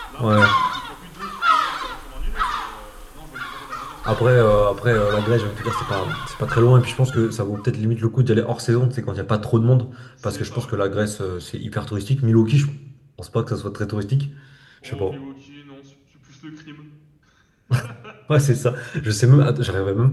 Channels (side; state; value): both; identical; correlation 1.00